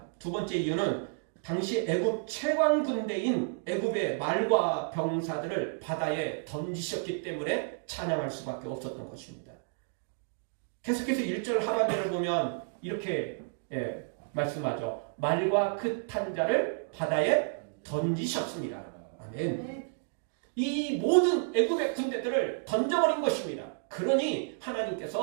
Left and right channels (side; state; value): left; silent; digital silence